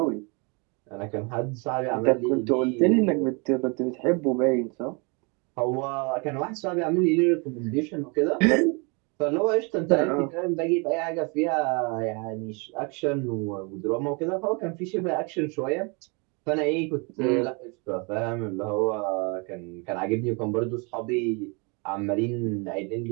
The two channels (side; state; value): left; quieter; 31.9 dB